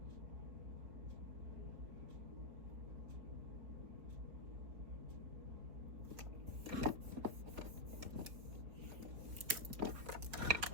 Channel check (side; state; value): left; late; 4.2 ms